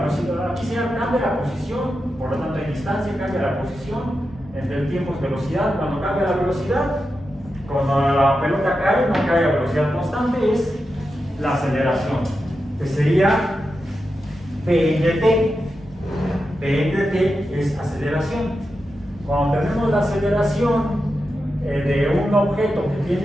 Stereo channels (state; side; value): normal; both; correlation 0.89